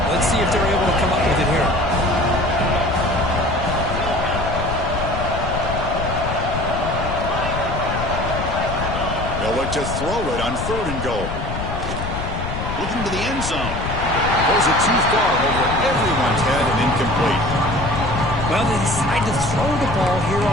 Let's see if they're able to come up with it here. They'll look to throw it on third and goal. Looking to the end zone. Throws it too far over everyone's head and incomplete. Well, they decide to throw the ball here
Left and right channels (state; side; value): noise; left; rumble, 5 dB below the sound